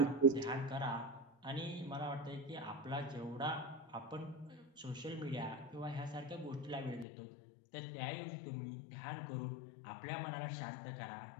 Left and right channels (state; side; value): drops out; right; at 7.1 s